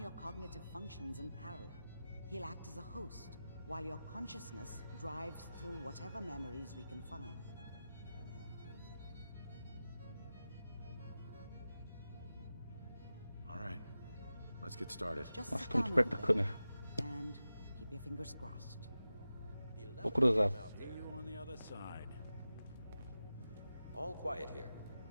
your cognitive functions in parallel. He'll act as a host, while your consciousness drives through whatever memories we can find. All right. Let's get started. Just Nossa, sit tô muito down a perto da little câmera. bit and keep your fingers crossed. Vou cruzar. See you on the other side. All quiet here.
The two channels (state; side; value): inverted; both; correlation -0.94